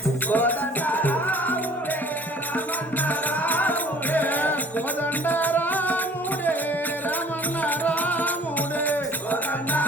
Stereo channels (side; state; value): both; normal; correlation 0.52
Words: కోదండ రాముడే రమణ రాముడే కోదండ రాముడే రమణ రాముడే కోదండ